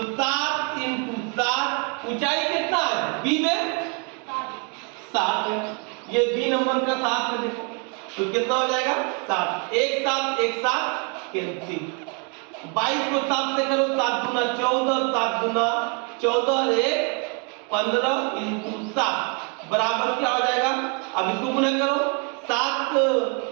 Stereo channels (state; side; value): quieter; left; 36.2 dB